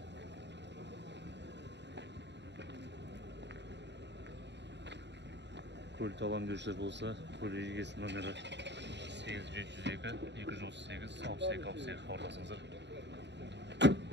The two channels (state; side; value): late; left; 0.51 ms